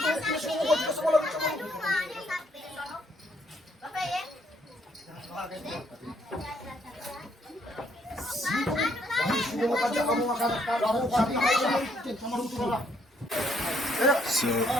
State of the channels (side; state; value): both; normal; correlation 0.69